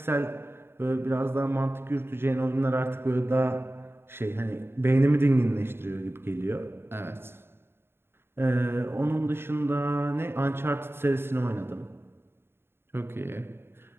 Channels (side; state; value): left; late; 0.11 ms